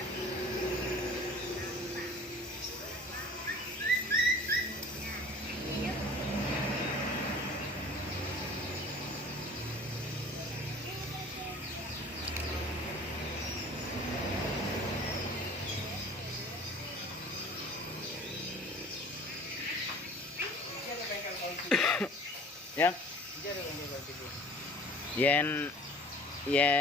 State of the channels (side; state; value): both; normal; correlation 0.46